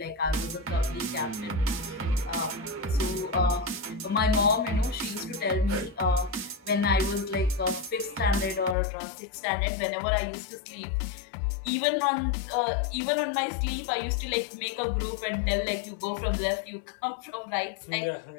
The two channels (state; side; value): drops out; right; at 8.8 s